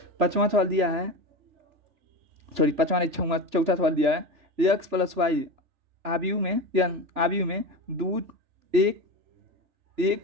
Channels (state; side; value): late; left; 3.4 ms